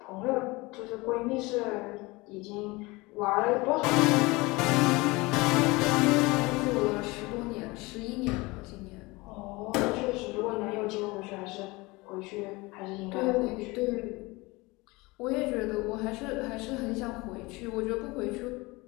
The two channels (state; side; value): quieter; right; 23.3 dB